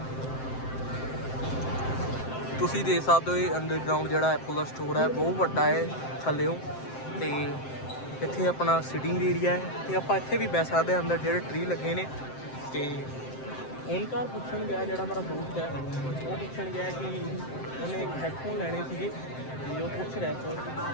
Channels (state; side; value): late; right; 7.7 ms